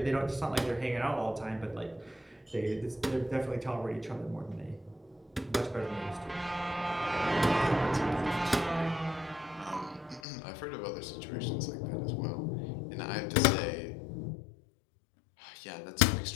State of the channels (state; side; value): drops out; right; at 10.2 s